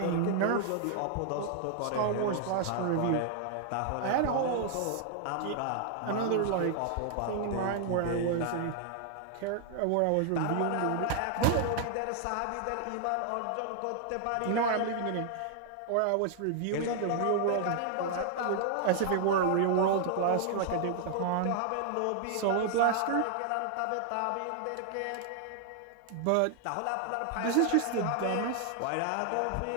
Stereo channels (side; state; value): both; different; correlation 0.00